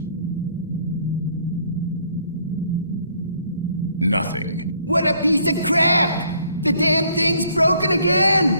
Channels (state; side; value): inverted; both; correlation -0.64